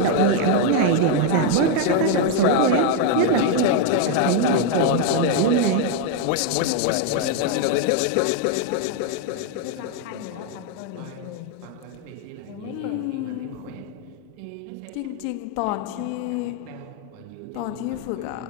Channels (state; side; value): different; both; correlation 0.01